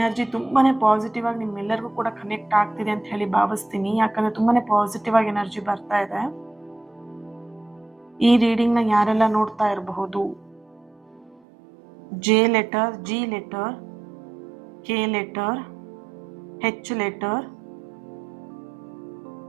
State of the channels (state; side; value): drops out; left; at 11.4 s